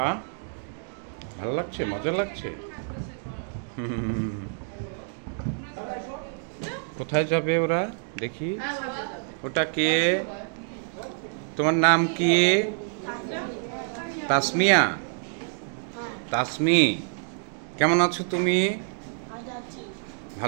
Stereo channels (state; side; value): silent; left; 60 dB below the other